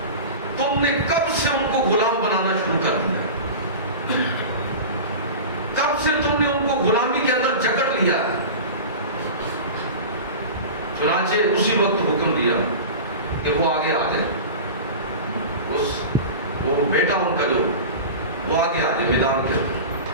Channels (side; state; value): both; inverted; correlation -0.31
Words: تم نے کب سے ان کو غلام بنانا شروع کر دیا؟ کب سے تم نے ان کو غلامی کے اندر جکڑ لیا؟ چنانچہ اسی وقت حکم دیا کہ وہ آگے آ جائے. وہ بیٹا ان کا جو وہ آگے آ جائے میدان کے اندر.